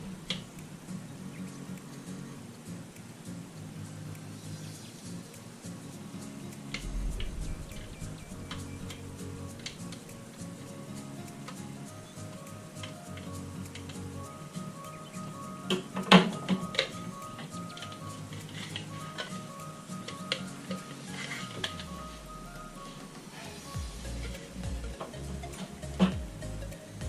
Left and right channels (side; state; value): both; identical; correlation 1.00